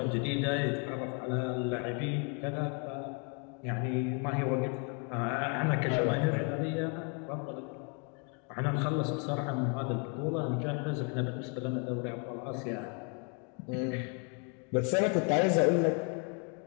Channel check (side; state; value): right; quieter; 37.4 dB